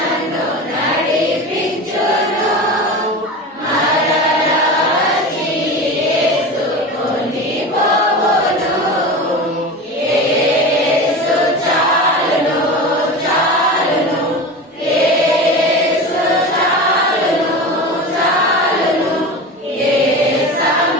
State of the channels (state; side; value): normal; both; correlation 0.28